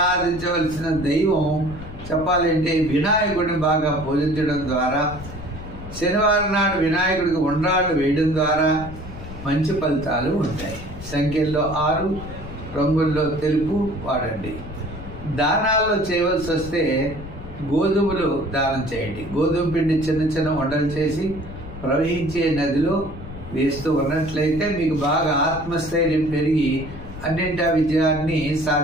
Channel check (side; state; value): left; noise; rumble, 13 dB below the sound